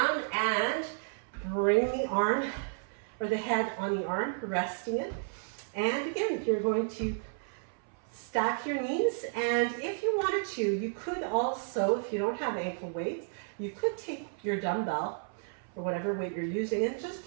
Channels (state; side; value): silent; left; 56 dB below the other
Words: and bring the arm or the head on the arm, resting it. And again, you're going to stack your knees, and if you wanted to, you could also, if you don't have ankle weights, you could take your dumbbell or whatever weight you're using and just